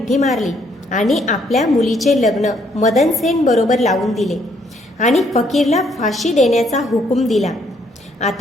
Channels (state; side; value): normal; both; correlation 0.69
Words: मारली आणि आपल्या मुलीचे लग्न मदनसेन बरोबर लावून दिले आणि फकीरला फाशी देण्याचा हुकूम दिला.